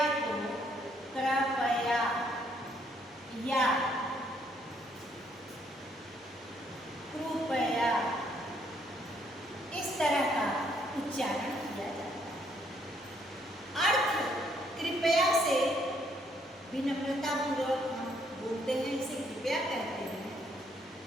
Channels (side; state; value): both; normal; correlation 0.69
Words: को कृपया या कृपया इस तरह का उच्चारण किया जाता है। अर्थ कृपया से विनम्रता पूर्वक हम बोलते हैं, इसे कृपया कहते हैं।